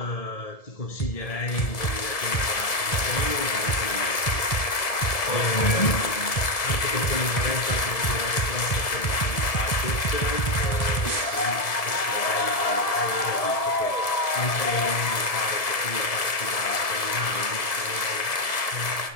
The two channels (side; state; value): right; late; 1.7 ms